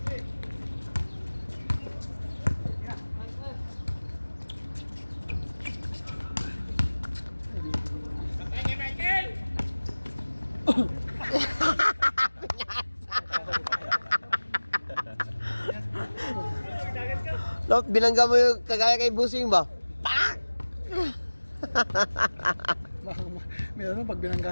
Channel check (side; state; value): both; inverted; correlation -1.00